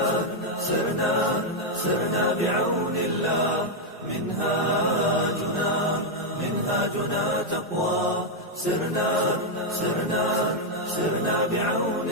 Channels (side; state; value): both; normal; correlation 0.00